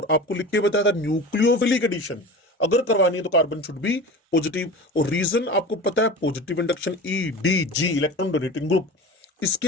आपको लिख के बताया था न्यूक्लियोफिलिक एडिशन अगर करवानी है तो कार्बन शुड बी पॉजिटिव, और रीजन आपको पता है positive induction EDG electron donating group. इसके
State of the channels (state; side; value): normal; both; correlation 0.34